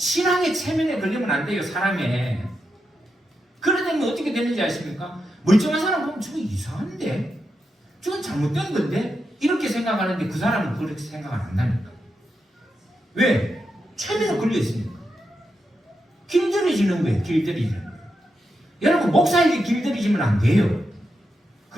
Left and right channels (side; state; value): both; normal; correlation 0.86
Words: 체면에 걸리면 안 돼요. 사람에. 그러다면 어떻게 되는지 아십니까? 멀쩡한 사람 보면 저거 이상한데? 저건 잘못된 건데? 이렇게 생각하는데 그 사람은 그렇게 생각 안 한다니까. 왜? 체면에 걸려 있으니까. 길들여지는 거예요. 길들여지는 거예요. 여러분 목사에게 길들여지면 안 돼요.